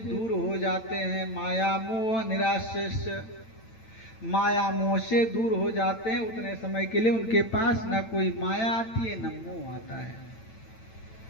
हो जाते हैं। माया मोह निराश्च, माया मोह से दूर हो जाते हैं। उतने समय के लिए उनके पास न कोई माया आती है न मोह आता है।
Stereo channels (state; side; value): late; right; 9.0 ms